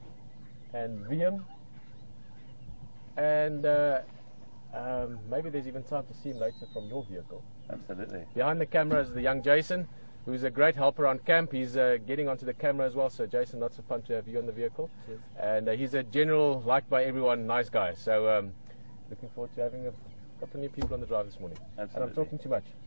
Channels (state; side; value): inverted; both; correlation -1.00